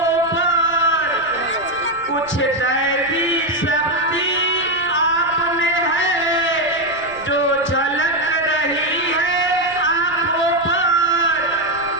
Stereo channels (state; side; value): noise; right; rumble, 23 dB below the sound